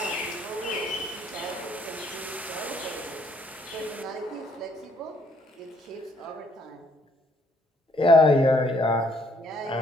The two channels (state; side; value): normal; both; correlation 0.67